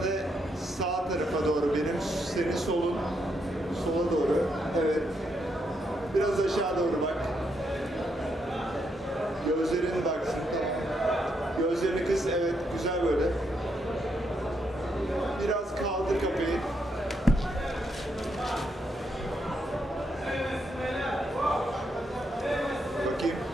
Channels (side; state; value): both; normal; correlation 0.78